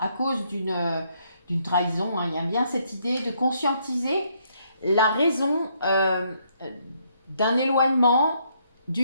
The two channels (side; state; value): both; inverted; correlation -0.71